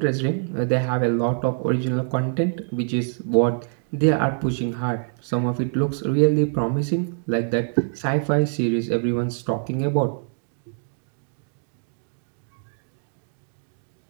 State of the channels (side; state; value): left; silent; 62 dB below the other